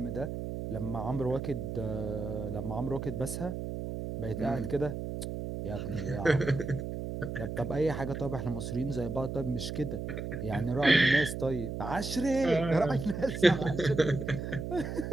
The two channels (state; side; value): noise; right; hum, 5 dB below the sound